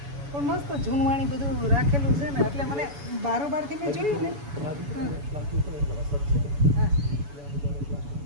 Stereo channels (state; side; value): late; left; 7.0 ms